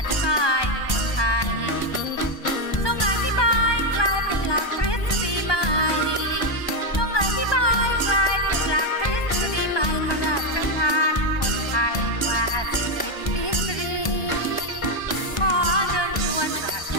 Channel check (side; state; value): right; late; 1.2 ms